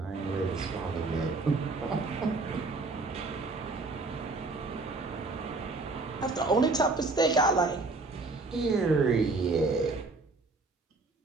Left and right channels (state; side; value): quieter; left; 3.6 dB